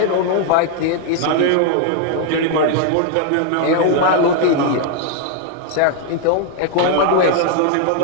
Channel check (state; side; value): different; both; correlation 0.00